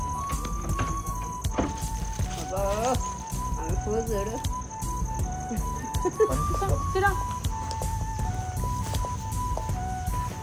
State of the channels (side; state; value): both; identical; correlation 1.00